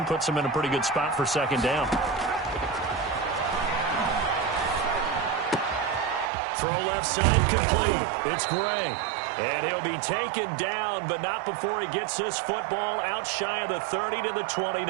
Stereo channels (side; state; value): left; drops out; at 6.3 s